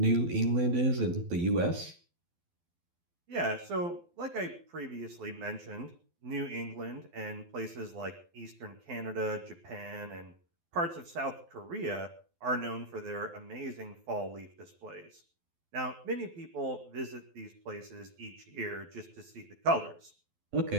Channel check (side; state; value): left; late; 12 ms